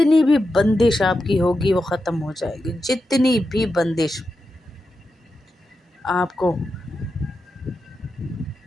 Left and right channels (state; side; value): normal; both; correlation 0.89